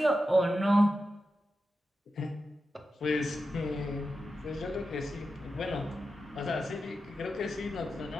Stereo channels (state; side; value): normal; both; correlation 0.90